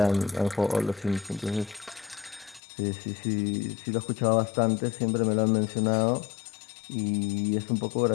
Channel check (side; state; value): right; drops out; at 2.6 s